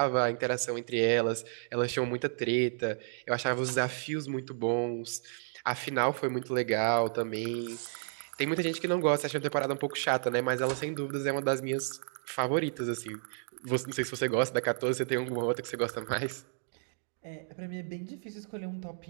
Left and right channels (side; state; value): left; silent; digital silence